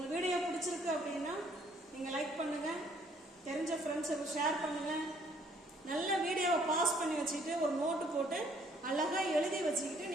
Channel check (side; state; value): both; normal; correlation 0.63